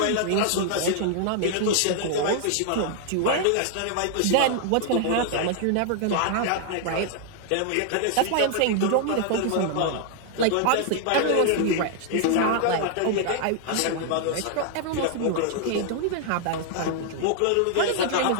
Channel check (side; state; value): both; different; correlation 0.00